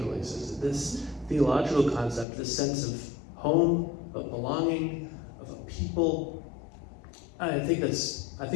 existed. This theological concept, this sense of home, of belonging, of a people, I think that's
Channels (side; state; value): right; drops out; at 2.2 s